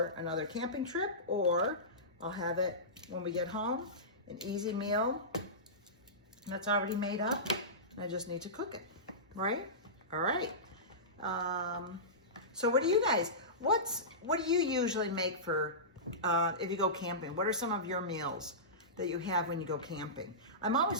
another camping trip, or I'll have it when we get home, an easy meal that's already made up. I just need to cook it, right? All right. So what do you guys, what do you usually make for, if you go camping? What are some of your meals that you have when you go camping? I'm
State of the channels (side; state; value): both; normal; correlation -0.19